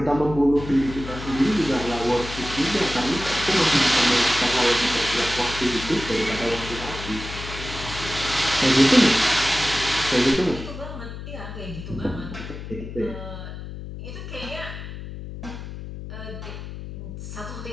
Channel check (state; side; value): noise; left; hum, 10 dB below the sound